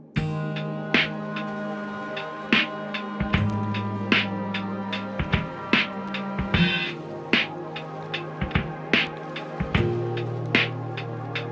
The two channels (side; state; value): both; identical; correlation 1.00